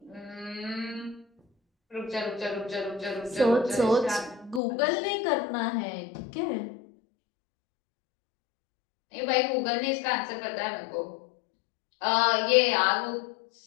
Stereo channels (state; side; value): drops out; right; at 4.6 s